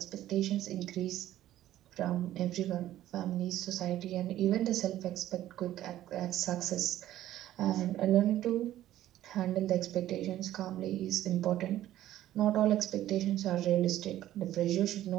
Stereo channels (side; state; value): left; quieter; 13.3 dB